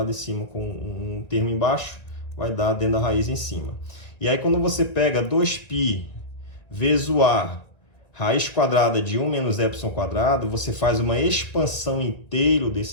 em cima com um termo embaixo, vai dar dentro da raiz em cima. E aí, quando você pega 2π vezes o a, raiz quadrada de 1 menos epsilon quadrado, você faz uma expansão inteira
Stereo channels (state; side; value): late; right; 2.0 ms